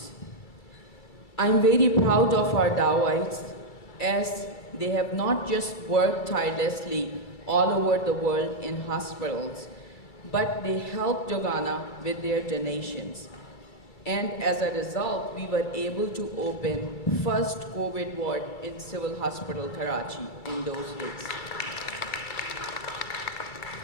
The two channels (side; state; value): right; late; 2.3 ms